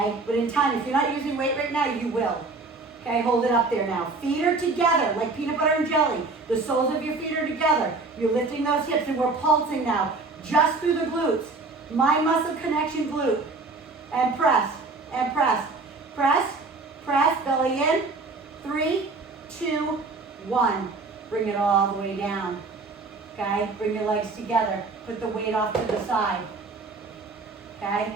but in time, if you're not using weight right now, you will. Okay, hold it up there now. Feet are together like peanut butter and jelly. The soles of your feet are together. You're lifting those hips and we're pulsing now just through the glutes. Mind muscle connection glute. And press, and press. Press, press, belly in. 3, 2, 1. Bring it all the way down. Okay, bring your legs together. Put the weight off to the side. Okay,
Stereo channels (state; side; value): quieter; left; 3.7 dB